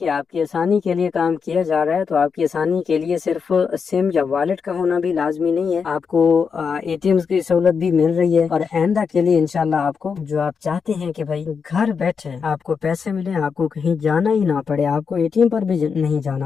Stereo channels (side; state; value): right; quieter; 5.9 dB